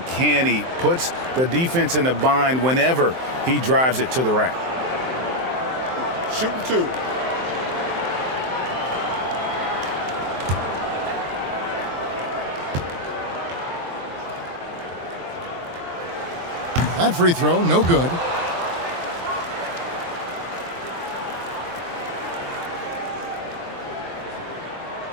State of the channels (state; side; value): late; left; 23 ms